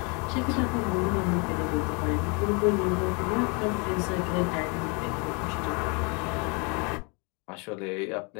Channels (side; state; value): right; quieter; 32.4 dB